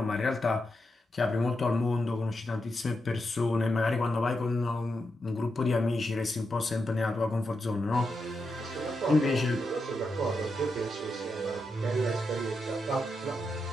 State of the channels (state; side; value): normal; both; correlation 0.85